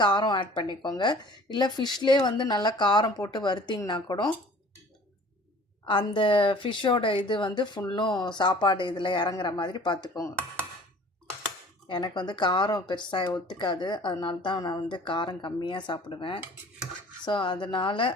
காரம் ஆட் பண்ணிக்கோங்க. இல்லை ஃபிஷ்லேயே வந்து நல்லா காரம் போட்டு வறுத்திங்கன்னா கூட அந்த ஃபிஷ்ஷோட இது வந்து ஃபுல்லும் சாப்பாடு இதில் இறங்குற மாதிரி பார்த்துக்கோங்க. எனக்கு வந்து காரம் பெருசாக ஒத்துக்காது, அதனால தான் நான் வந்து காரம் கம்மியாக சாப்பிடுவேன். ஸோ அதனால்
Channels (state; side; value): normal; both; correlation 0.48